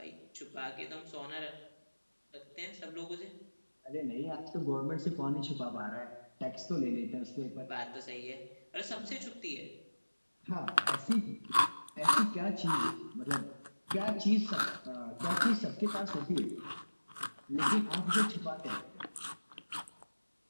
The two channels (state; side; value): inverted; both; correlation -1.00